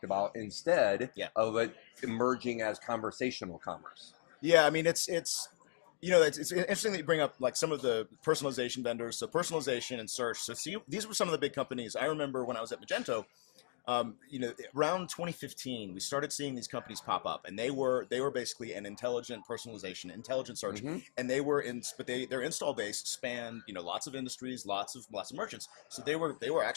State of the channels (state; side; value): silent; right; digital silence